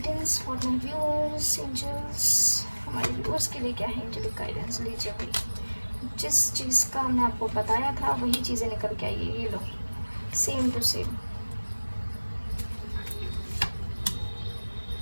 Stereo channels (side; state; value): both; inverted; correlation -1.00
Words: for my viewers. Angels हमारे व्यूअर्स के लिए क्या है एंजेलिक गाइडेंस, लीजिए भाई। जिस चीज़ का हमने आपको बताया था वही चीज़ें निकल के आई है, ये लो, सेम टू सेम,